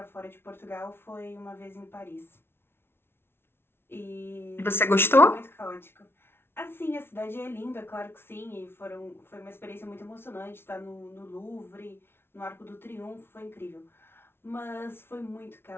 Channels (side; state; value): right; late; 0.12 ms